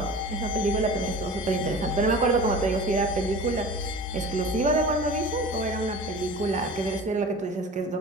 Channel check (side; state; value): both; normal; correlation 0.38